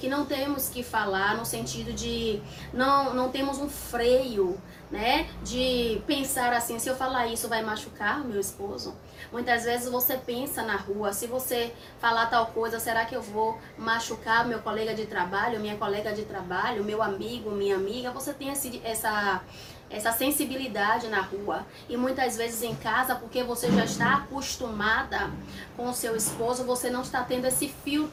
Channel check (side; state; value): both; identical; correlation 1.00